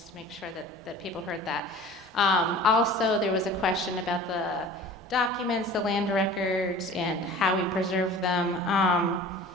to make sure that people heard that. Also, there was a question about the documents, the land records, and how we preserve them.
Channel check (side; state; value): both; normal; correlation 0.42